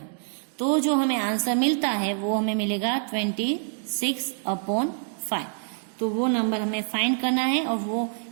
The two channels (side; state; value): left; silent; digital silence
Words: तो जो हमें आंसर मिलता है वो हमें मिलेगा 26/5। तो वो नंबर हमें फाइंड करना है, और वो